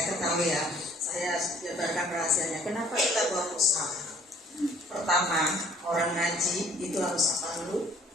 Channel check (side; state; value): both; normal; correlation 0.57